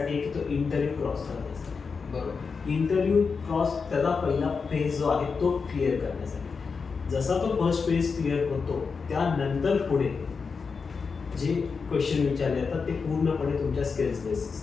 की तो इंटरव्ह्यू क्रॉस करण्यासाठी. बरोबर, इंटरव्ह्यू क्रॉस त्याचा पहिला फेज जो आहे तो क्लिअर करण्यासाठी. जसा तो फर्स्ट फेज क्लिअर होतो त्यानंतर पुढे जे क्वेश्चन विचारले जातात ते पूर्णपणे तुमच्या स्किल्स बेस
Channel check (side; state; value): right; quieter; 5.2 dB